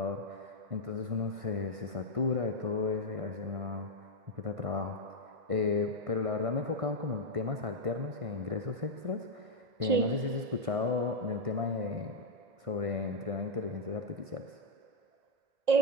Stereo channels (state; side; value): late; left; 1.6 ms